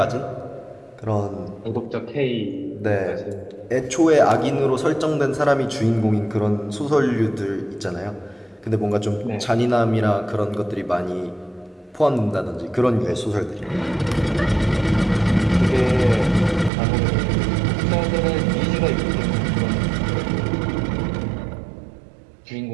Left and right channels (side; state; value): left; drops out; at 16.7 s